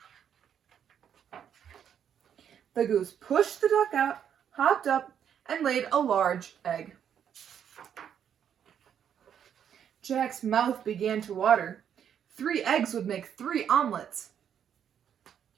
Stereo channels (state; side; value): quieter; left; 8.7 dB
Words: The goose pushed the duck out, hopped up, and laid a large egg. Jack's mouth began to water. 3 eggs would make 3 omelets.